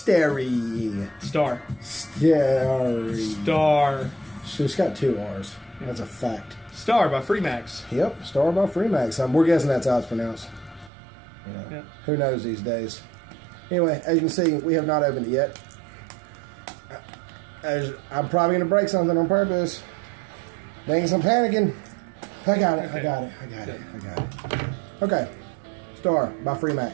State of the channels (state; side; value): drops out; left; at 10.9 s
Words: STARRE. STARRE. STARRE. So it's got 2 R's. That's a fact. STARRE by Freemax. Yep, STARRE by Freemax. We're guessing that's how it's pronounced. Yeah. Who knows these days? Anyway, as you can see, we have not opened it yet. I'm probably going to break something on purpose. Thanks, I'm panicking. I got it. Okay. I got it. I got it. I got it. Okay. STARRE by